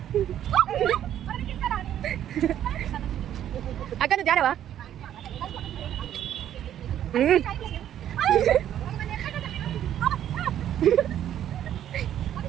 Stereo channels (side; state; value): left; quieter; 10.9 dB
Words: అక్క నువ్వు జారవా?